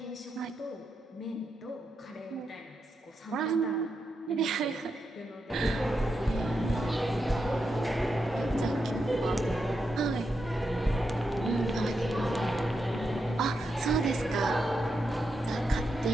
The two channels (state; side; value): normal; both; correlation 0.85